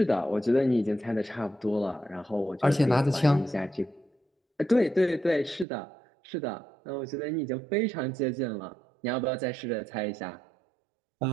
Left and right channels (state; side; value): drops out; left; at 5.7 s